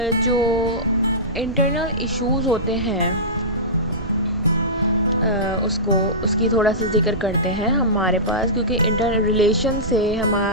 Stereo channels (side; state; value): right; noise; rumble, 10 dB below the sound